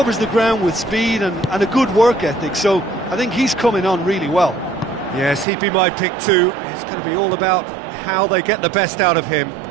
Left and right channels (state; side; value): drops out; left; at 5.5 s